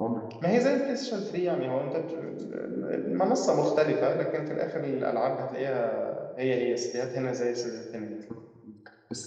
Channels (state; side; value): identical; both; correlation 1.00